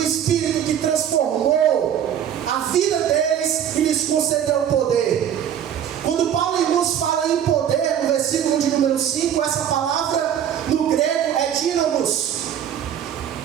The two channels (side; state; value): left; quieter; 9.5 dB